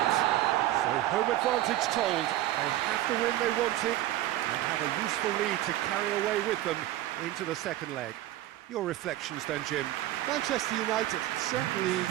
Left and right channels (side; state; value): left; quieter; 14.5 dB